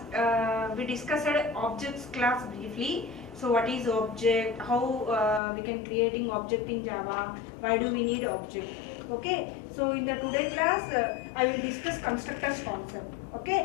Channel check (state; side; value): drops out; right; at 5.4 s